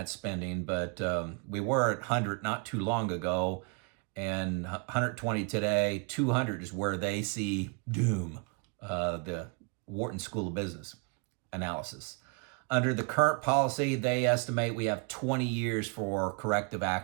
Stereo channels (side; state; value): left; quieter; 33.8 dB